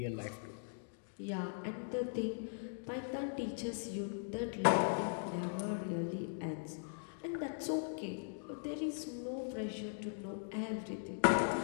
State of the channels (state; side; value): silent; right; digital silence